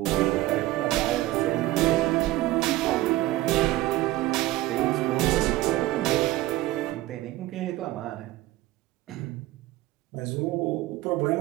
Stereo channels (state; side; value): quieter; left; 17.1 dB